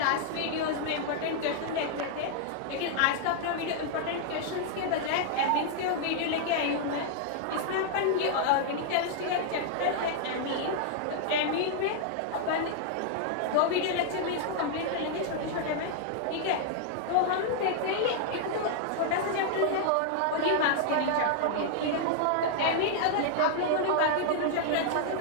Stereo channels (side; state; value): both; different; correlation -0.01